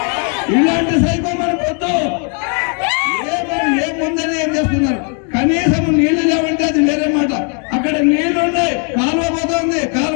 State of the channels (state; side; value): quieter; right; 39.2 dB